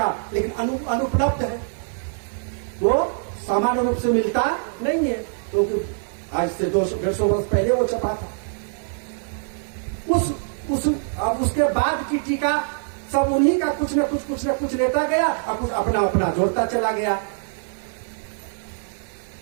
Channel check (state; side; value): silent; left; 56 dB below the other